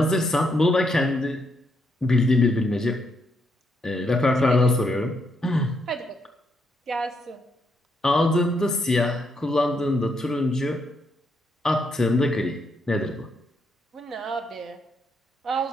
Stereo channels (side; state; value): both; normal; correlation 0.77